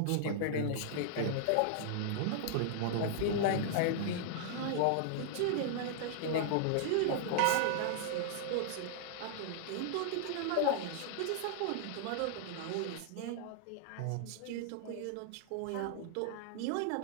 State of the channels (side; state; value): both; different; correlation -0.01